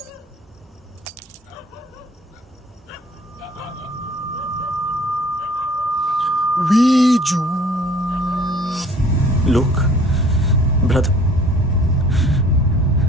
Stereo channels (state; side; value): normal; both; correlation 0.53